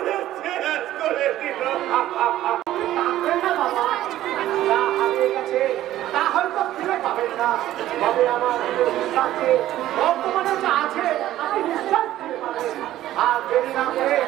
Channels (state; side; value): quieter; left; 13.8 dB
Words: শেষ করে দিল। তা হয়তো ফিরে পাবেন না, তবে আমার কাছে বর্তমানে যা আছে আপনি নিশ্চয় ফিরে পাবেন। আর দেরি না করে